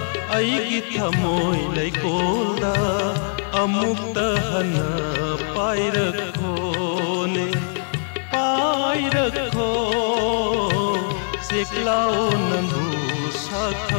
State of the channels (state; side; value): silent; right; 64 dB below the other